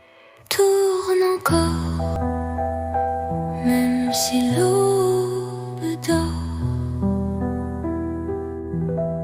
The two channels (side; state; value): both; identical; correlation 1.00